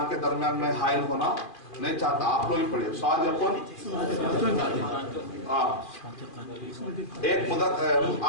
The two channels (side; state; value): right; late; 2.4 ms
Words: के दरमियान में हाइल होना नहीं चाहता, आप लोग ही पढ़िए। सादिकुन, एक मुज़क्कर